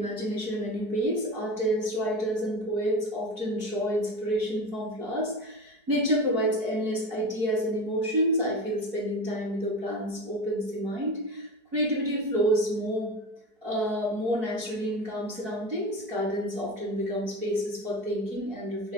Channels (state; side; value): late; left; 4.6 ms